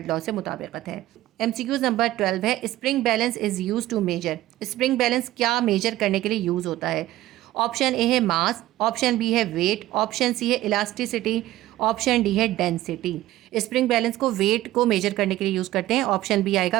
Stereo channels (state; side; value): quieter; left; 15.4 dB